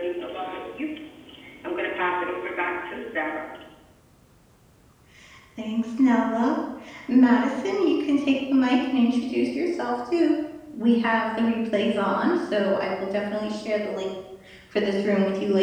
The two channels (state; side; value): identical; both; correlation 1.00